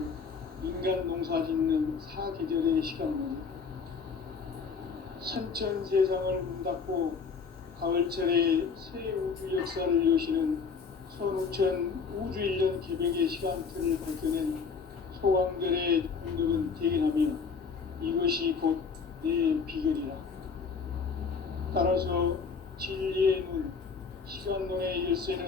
인간 농사 짓는 사계절의 시간문이다. 선천 세상을 문 닫고 가을철에 새 우주 역사를 여시는 선우천 우주 1년 개백의 시간틀을 밝혀낸 소강절의 공덕은 대견하며 이것이 곧 내 비결이라. 따라서 진리의 눈, 시간론의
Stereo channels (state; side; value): quieter; right; 5.5 dB